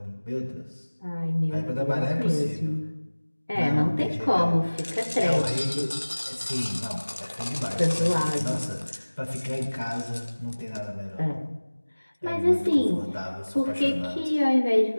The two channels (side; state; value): both; inverted; correlation -1.00